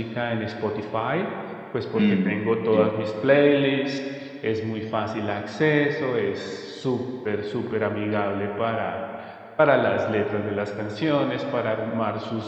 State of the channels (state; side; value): identical; both; correlation 1.00